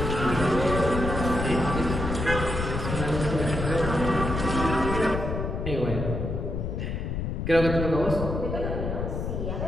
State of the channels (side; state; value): left; noise; rumble, 3 dB below the sound